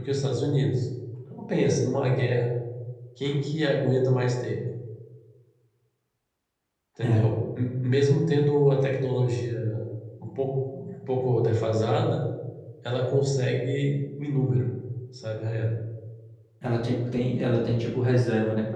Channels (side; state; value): both; identical; correlation 1.00